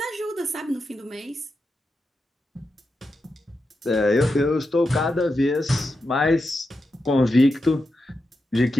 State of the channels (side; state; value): both; normal; correlation 0.88